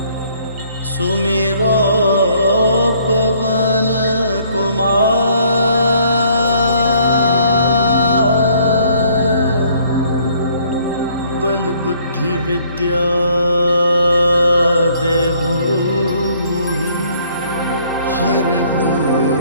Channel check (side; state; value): both; inverted; correlation -0.62